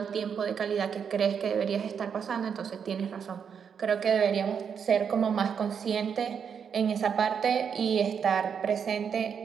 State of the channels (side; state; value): left; quieter; 7.1 dB